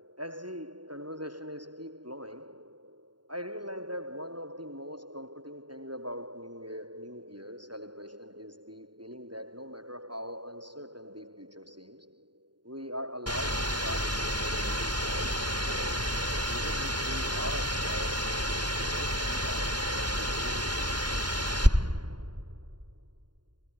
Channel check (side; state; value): left; late; 0.71 ms